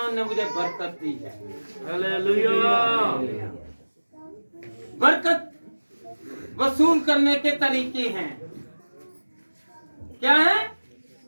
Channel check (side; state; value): both; inverted; correlation -1.00